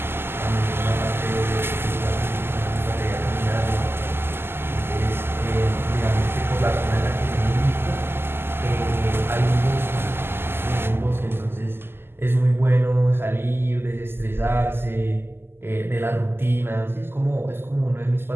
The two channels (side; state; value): left; late; 0.11 ms